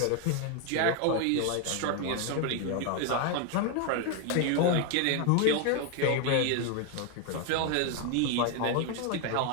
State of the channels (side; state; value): both; different; correlation 0.01